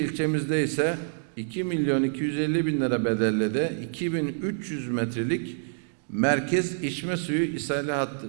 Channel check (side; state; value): left; silent; digital silence